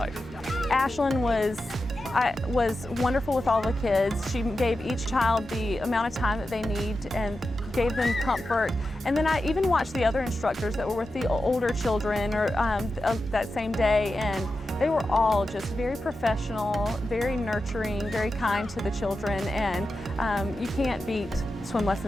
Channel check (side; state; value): both; normal; correlation 0.91